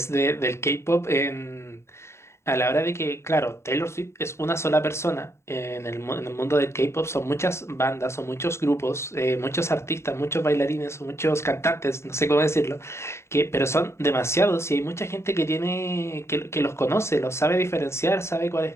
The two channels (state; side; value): late; right; 0.13 ms